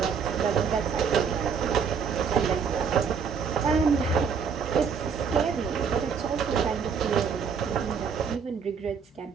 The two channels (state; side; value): quieter; left; 6.3 dB